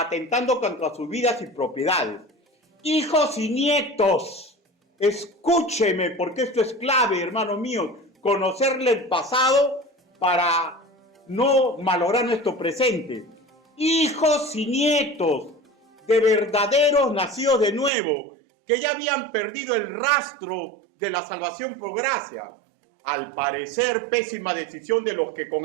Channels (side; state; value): left; drops out; at 17.9 s